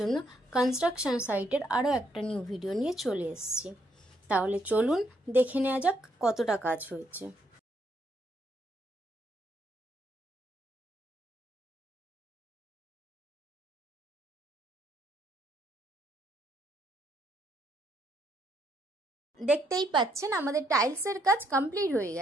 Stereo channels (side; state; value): both; normal; correlation 0.73